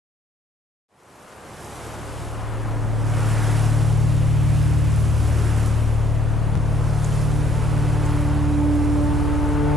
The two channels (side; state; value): both; normal; correlation 0.62